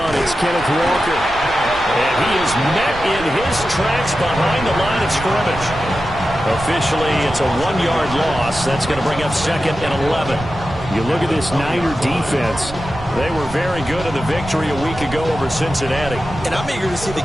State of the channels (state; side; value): noise; right; rumble, 14 dB below the sound